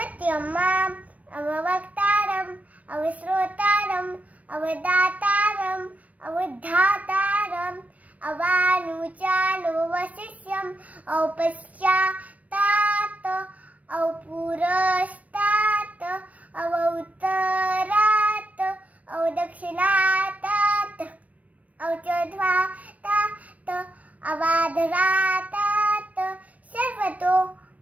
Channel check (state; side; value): late; left; 0.068 ms